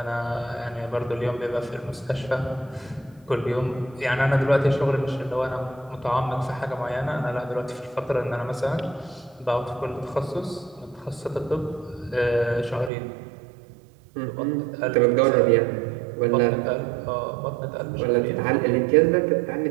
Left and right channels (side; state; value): left; drops out; at 12.9 s